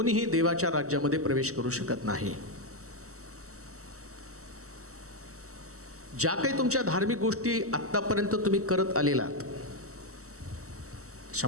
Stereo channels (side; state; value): left; late; 0.65 ms